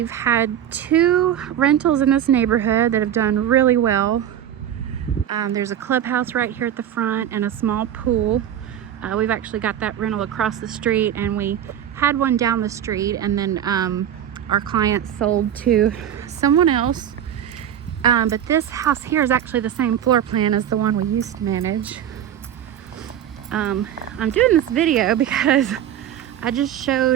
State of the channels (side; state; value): left; quieter; 10.2 dB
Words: had 2 rentals in this neighborhood that have done really well. There's a clubhouse right here at the front and a small pool. We've actually got that rental across the street, and we had one down the street, and then our client sold to someone else. But this house here is actually the same floor plan as the one we used to manage. I'm doing this video because I just